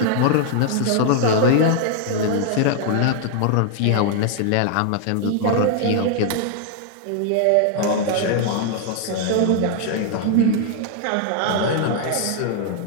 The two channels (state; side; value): different; both; correlation 0.00